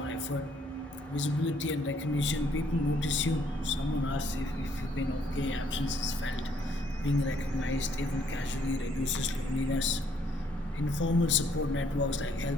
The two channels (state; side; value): normal; both; correlation 0.67